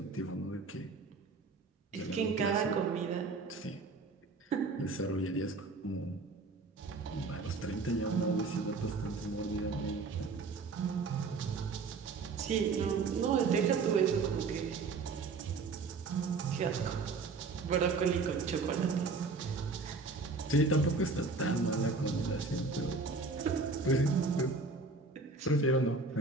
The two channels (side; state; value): left; quieter; 4.1 dB